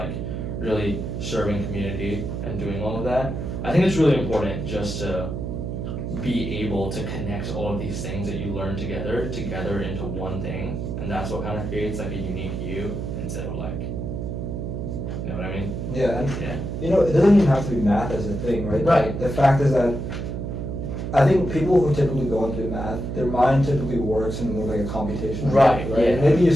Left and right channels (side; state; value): right; noise; hum, 4 dB below the sound